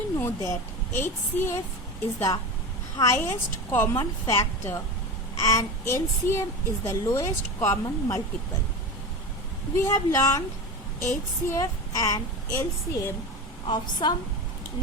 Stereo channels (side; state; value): both; normal; correlation 0.25